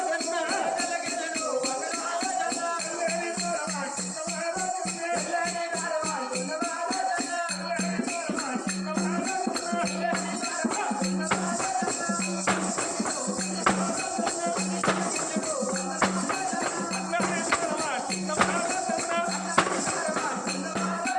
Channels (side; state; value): both; identical; correlation 1.00